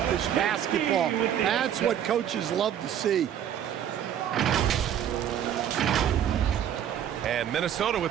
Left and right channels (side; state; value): left; quieter; 9.9 dB